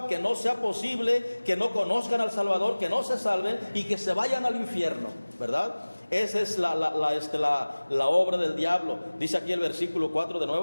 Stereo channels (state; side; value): inverted; both; correlation -1.00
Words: que no sea posible que no conozcan al Salvador, que no se salven y que se vayan al infierno, ¿verdad? Esa es la obra del diablo. Dice aquí el versículo 4 de